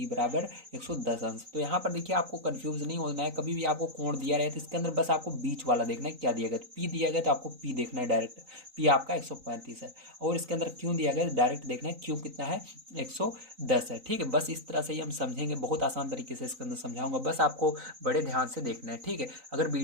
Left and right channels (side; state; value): left; late; 3.9 ms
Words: बराबर 110 अंश। तो यहाँ पर देखिए आपको कंफ्यूज नहीं होना है। कभी भी आपको कोण दिया रहे तो इसके अंदर बस आपको बीच वाला देखना है क्या दिया गया। तो पी दिया गया तो आपको पी देखना है डायरेक्ट, पी आपका 135 है और इसके अंदर क्यों दिया गया डायरेक्ट देखना है क्यों कितना है 110 है। ठीक है, बस इस तरह से ही हम समझेंगे, बहुत आसान तरीके से इसके अंदर समझाऊंगा, बस आपको बड़े ध्यान से देखना है। ठीक है, अगर